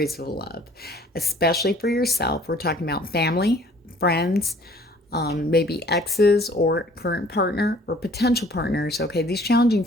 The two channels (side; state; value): both; normal; correlation 0.54